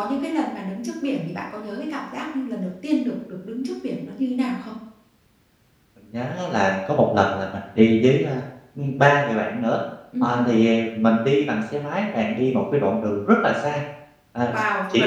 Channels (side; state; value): both; identical; correlation 1.00